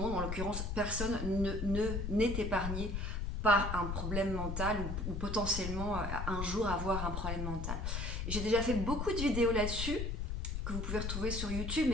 en l'occurrence personne n'est épargné par un problème mental ou potentiellement un jour avoir un problème mental. J'ai déjà fait beaucoup de vidéos là-dessus que vous pouvez retrouver sur YouTube,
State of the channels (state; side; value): noise; left; rumble, 3 dB below the sound